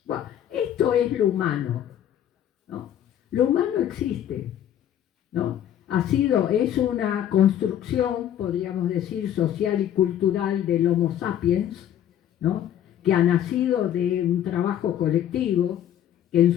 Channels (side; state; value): right; quieter; 10.7 dB